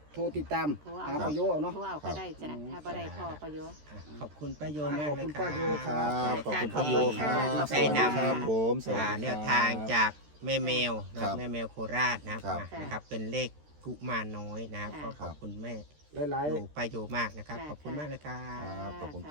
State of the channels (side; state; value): left; late; 13 ms